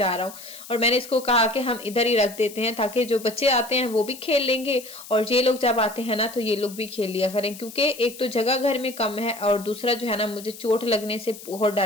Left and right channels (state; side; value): noise; left; hiss, 16 dB below the sound